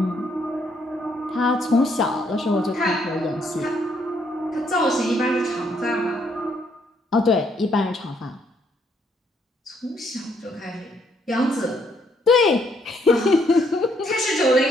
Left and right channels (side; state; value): both; normal; correlation 0.71